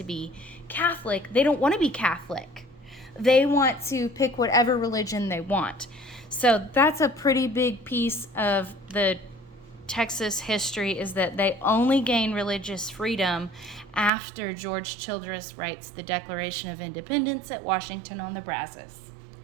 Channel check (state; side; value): drops out; left; at 14.1 s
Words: be Catholic. They don't want to be Catholic. They want to pick whatever religion they want. So that's a pretty big piece of the Texas history, is that they only gain religious freedom after George Childress writes the Declaration of Independence at Washington on the Brazos.